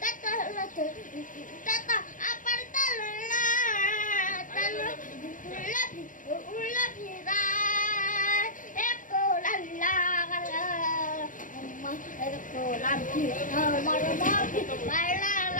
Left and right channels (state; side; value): late; right; 0.38 ms